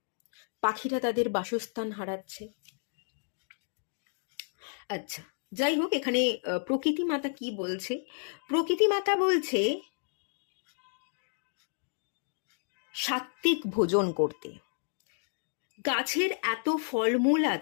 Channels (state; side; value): silent; right; 57 dB below the other